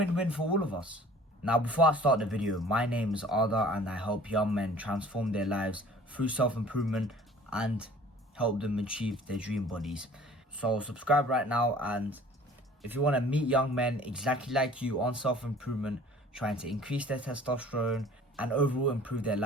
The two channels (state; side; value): normal; both; correlation 0.49